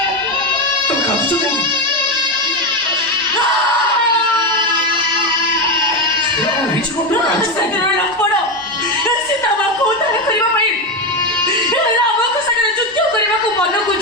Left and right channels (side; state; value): both; normal; correlation 0.12